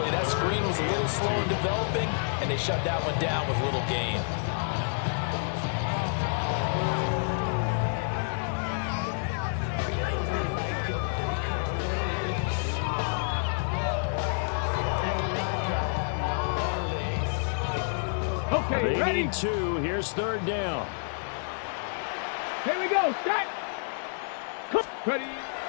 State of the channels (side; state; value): right; silent; digital silence